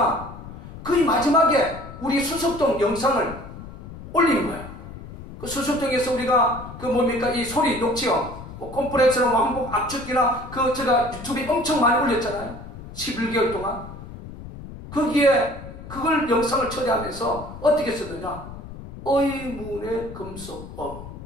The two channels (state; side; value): noise; left; rumble, 13 dB below the sound